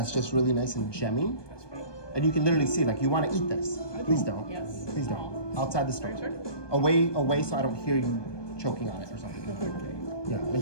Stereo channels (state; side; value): late; right; 1.2 ms